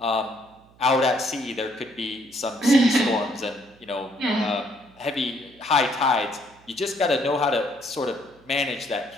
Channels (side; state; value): right; noise; hum, 28 dB below the sound